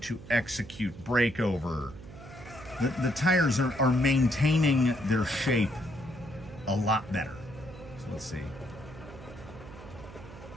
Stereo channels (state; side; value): noise; right; hum, 16 dB below the sound